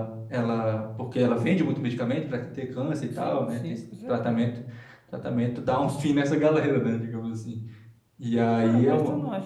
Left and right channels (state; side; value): identical; both; correlation 1.00